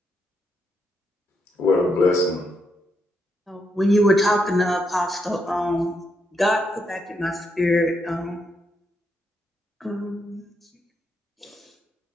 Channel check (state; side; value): normal; both; correlation 0.80